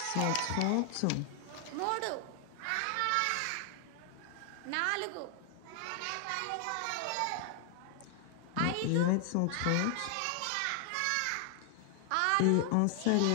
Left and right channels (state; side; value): different; both; correlation 0.00